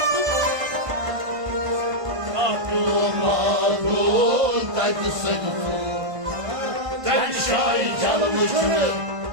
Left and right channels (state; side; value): late; left; 1.5 ms